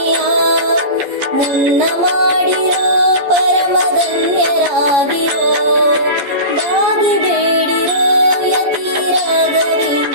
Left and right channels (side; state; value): left; late; 14 ms